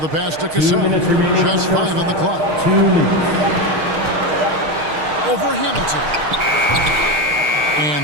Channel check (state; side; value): late; left; 6.5 ms